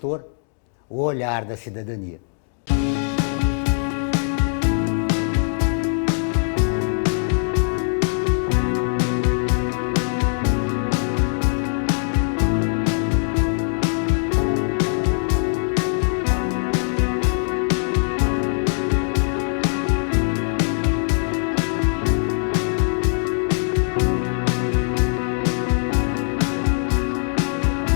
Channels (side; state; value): right; silent; digital silence